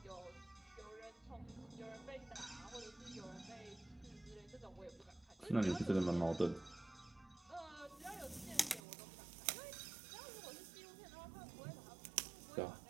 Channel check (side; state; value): left; drops out; at 8.8 s